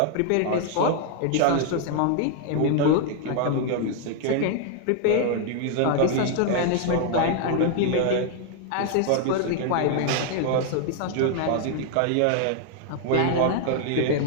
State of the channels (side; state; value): both; different; correlation 0.00